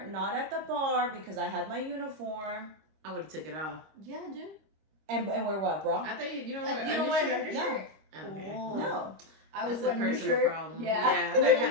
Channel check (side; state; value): left; late; 26 ms